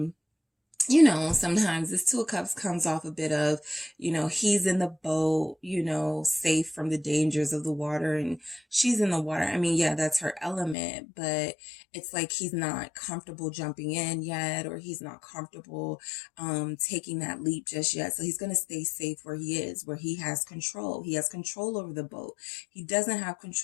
you know, sometimes this Two of Cups comes off a bit of, you know, he's in the boat, you know, safe from the dangers of the water, and she's in the water. I mean, yeah, that's her element, but it's like he's not comfortable jumping in yet, or he's not comfortable taking that leap just yet. So he's going to stay safe where he is, where he has control. He has control over the boat. He doesn't have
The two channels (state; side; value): drops out; right; at 10.8 s